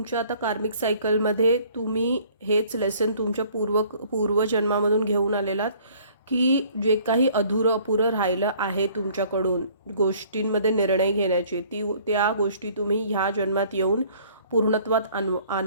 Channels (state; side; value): inverted; both; correlation -0.56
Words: आता कार्मिक सायकलमध्ये तुम्ही हेच लेसन तुमच्या पूर्वजन्मामधून घेऊन आलेलात की जे काही अपुरं राहिलं आहे तुमच्याकडून गोष्टींमध्ये निर्णय घेण्याचे, त्या गोष्टी तुम्ही ह्या जन्मात येऊन पूर्णत्वात